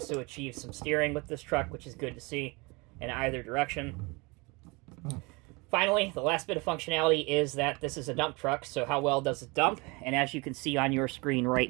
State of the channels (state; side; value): quieter; left; 26.9 dB